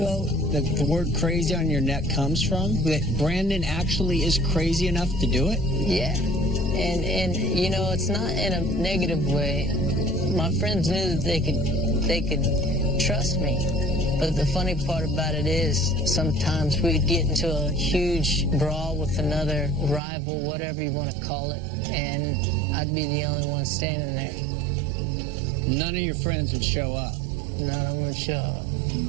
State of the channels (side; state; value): left; drops out; at 20.0 s